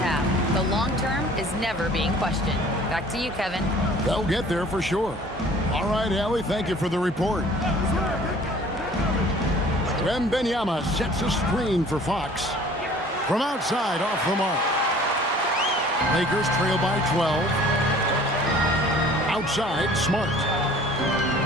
have. The long term is never being questioned." Back to you, Kevin. They'll get there for sure. All right, Allie, thank you for the report. Wembanyama sets a screen for Fox. From outside, off the mark. Lakers trail by 12. Outside, Smart.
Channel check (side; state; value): both; normal; correlation 0.50